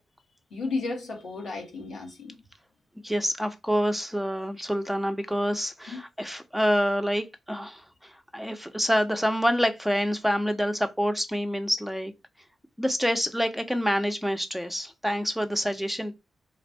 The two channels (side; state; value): both; normal; correlation 0.97